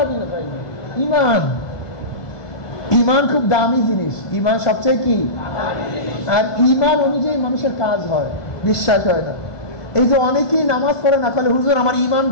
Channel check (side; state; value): right; late; 1.5 ms